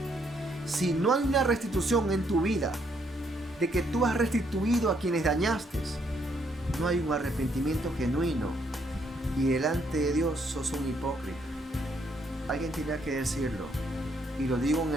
Si no hay una restitución en tu vida, de que tú has restituido a quienes dañaste, no hay un arrepentimiento genuino, y delante de Dios sos un hipócrita. Alguien tenía que decirlo, y lo digo en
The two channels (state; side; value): normal; both; correlation 0.71